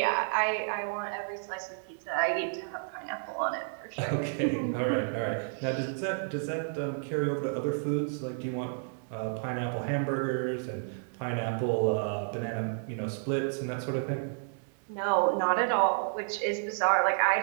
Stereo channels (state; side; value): silent; left; digital silence